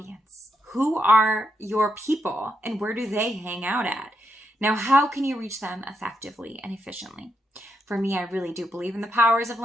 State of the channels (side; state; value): both; normal; correlation 0.81